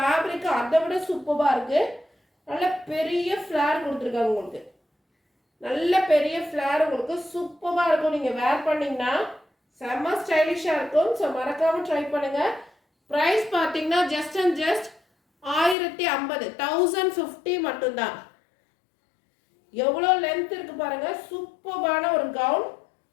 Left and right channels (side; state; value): right; drops out; at 15.8 s